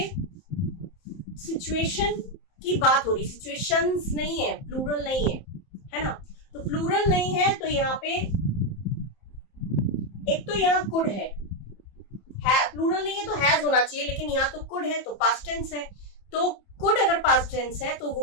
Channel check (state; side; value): late; right; 31 ms